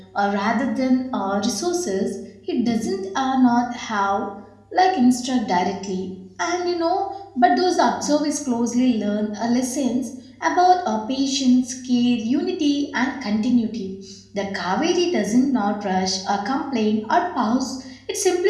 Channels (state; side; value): identical; both; correlation 1.00